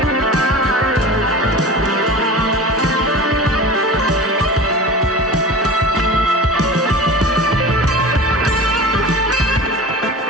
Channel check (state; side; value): normal; both; correlation 0.34